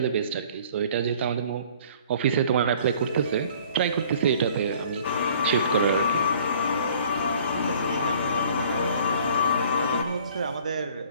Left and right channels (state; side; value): inverted; both; correlation -0.53